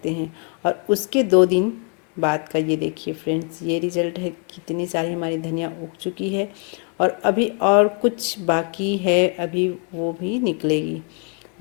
हैं। और उसके 2 दिन बाद का ये देखिए फ्रेंड्स, ये रिज़ल्ट है। कितनी सारी हमारी धनिया उग चुकी है और अभी और कुछ बाकी है, अभी वो भी निकलेगी,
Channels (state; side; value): quieter; right; 35.8 dB